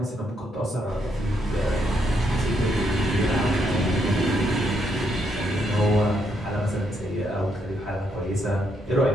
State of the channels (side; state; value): both; normal; correlation 0.76